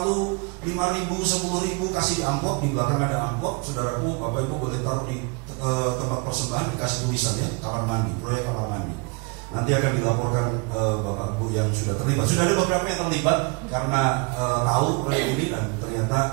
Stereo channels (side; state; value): left; quieter; 30.7 dB